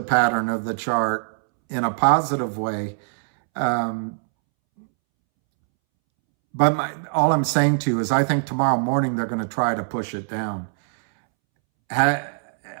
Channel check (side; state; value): left; silent; 64 dB below the other